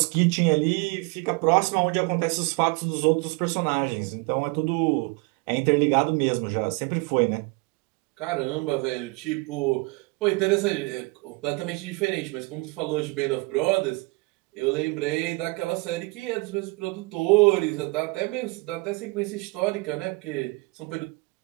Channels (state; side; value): quieter; left; 26.7 dB